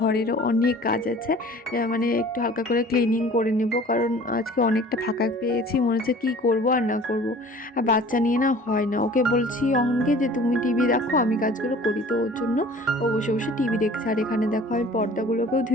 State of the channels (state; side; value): normal; both; correlation 0.47